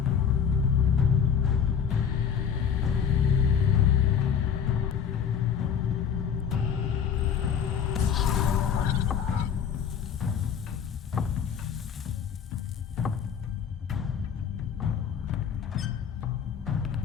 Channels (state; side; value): quieter; right; 7.6 dB